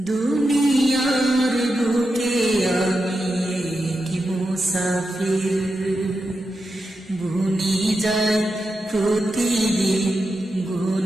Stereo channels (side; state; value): both; normal; correlation 0.88